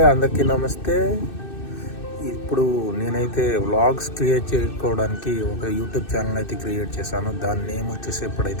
అందరికీ నమస్తే. ఇప్పుడు నేనైతే వ్లాగ్స్ క్రియేట్ చేసుకోవడానికి ఒక యూట్యూబ్ ఛానల్ అయితే క్రియేట్ చేశాను. దాని నేమ్ వచ్చేసి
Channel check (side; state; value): right; late; 2.6 ms